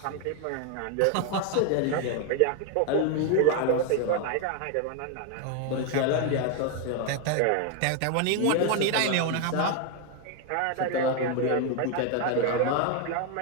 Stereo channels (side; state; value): both; different; correlation 0.01